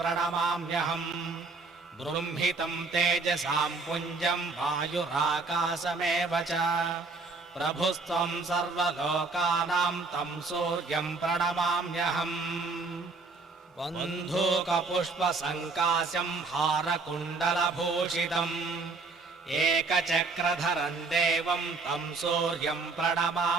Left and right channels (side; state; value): left; quieter; 3.9 dB